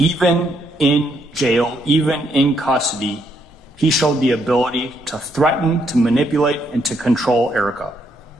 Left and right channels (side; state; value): both; normal; correlation 0.74